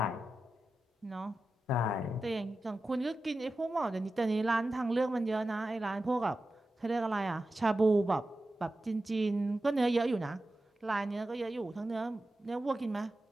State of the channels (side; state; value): both; normal; correlation 0.93